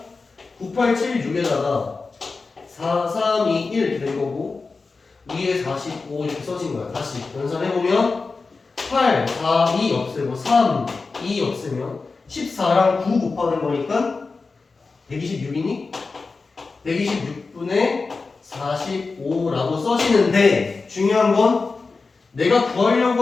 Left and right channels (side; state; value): right; quieter; 4.2 dB